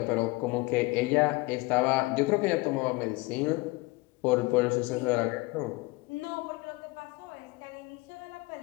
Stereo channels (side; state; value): right; quieter; 23.3 dB